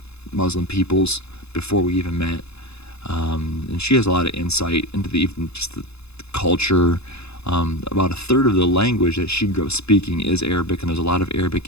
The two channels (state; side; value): late; right; 0.79 ms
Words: Muslim peoples before we even met. And she has a lot of insight into even just the culture. About a third of the language that she grew up speaking is Arabic, and there's a lot of Arabic